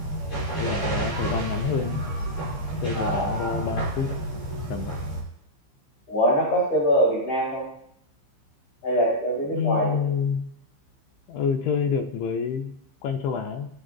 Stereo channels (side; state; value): right; late; 15 ms